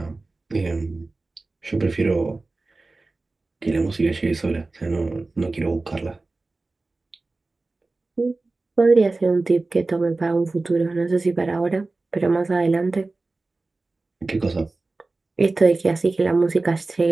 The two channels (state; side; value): quieter; left; 3.4 dB